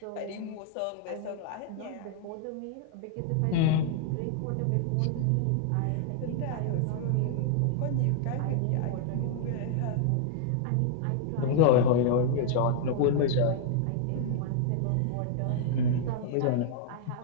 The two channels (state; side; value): different; both; correlation -0.01